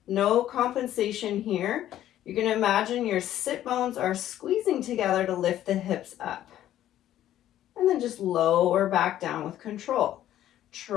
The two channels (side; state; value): right; quieter; 12.4 dB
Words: No compensation here. You're going to imagine your sit bones are squeezing together to lift the hips up. And then just lower back down with control.